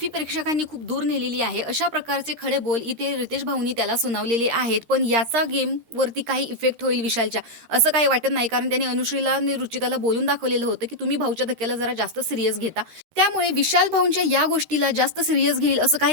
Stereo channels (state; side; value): late; left; 13 ms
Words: प्रेक्षकांनी खूप दूर नेलेली आहे. अशा प्रकारचे खडे बोल इथे रितेश भाऊनी त्याला सुनावलेले आहेत. पण याचा गेमवरती काही इफेक्ट होईल विशालच्या असं काही वाटत नाही. कारण त्यांनी अनुश्रीला आणि रुचिताला बोलून दाखवलेलं होतं की तुम्ही भाऊच्या धक्क्याला जरा जास्त सिरियस घेता. त्यामुळे विशाल भाऊंच्या या गोष्टीला जास्त सिरियस घेईल असं काही